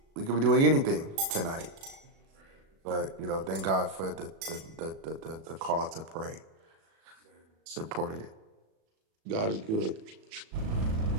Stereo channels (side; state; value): left; late; 37 ms